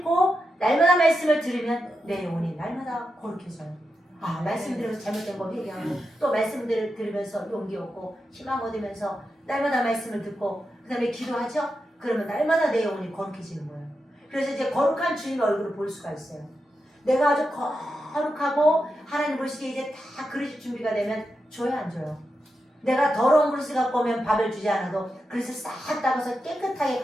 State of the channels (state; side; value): normal; both; correlation 0.88